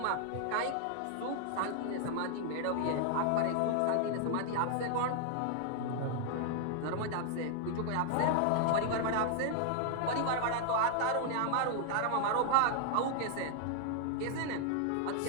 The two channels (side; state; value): both; different; correlation 0.00